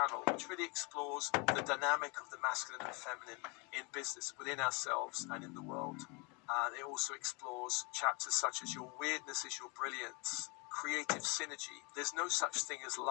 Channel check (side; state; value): right; quieter; 29.4 dB